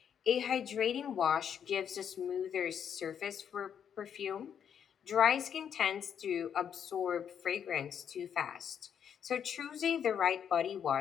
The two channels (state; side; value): quieter; right; 8.2 dB